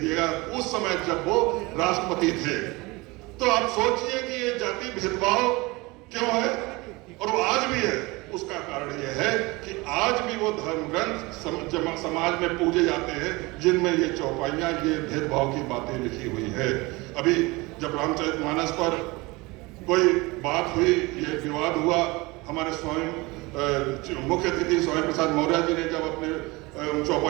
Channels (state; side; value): quieter; left; 23.6 dB